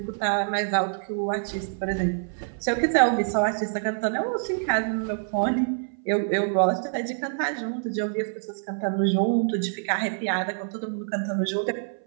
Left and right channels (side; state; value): left; silent; 58 dB below the other